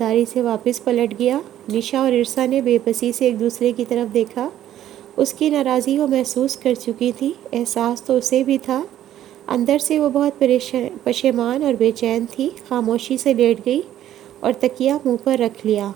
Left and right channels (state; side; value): quieter; left; 12.0 dB